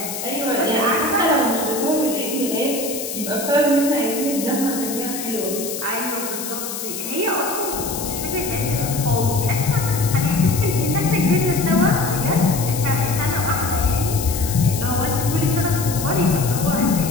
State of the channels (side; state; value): left; noise; hiss, 7 dB below the sound